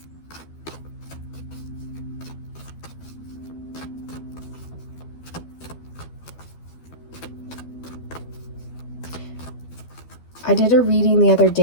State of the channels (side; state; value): right; late; 12 ms